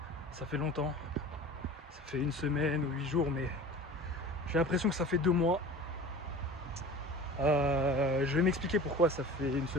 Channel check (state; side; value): normal; both; correlation 0.39